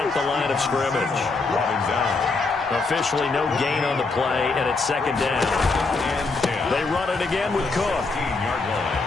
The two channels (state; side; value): quieter; right; 3.9 dB